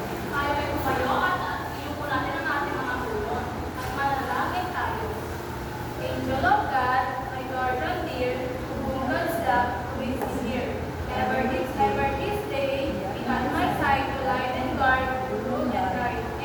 Tayo ay tumayo at iyuko natin ang ating mga ulo at manalangin tayo. Angel of God, my guardian dear, to whom God's love is here. Ever this day, be at my side to light and guard, rule and guide.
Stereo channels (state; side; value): identical; both; correlation 1.00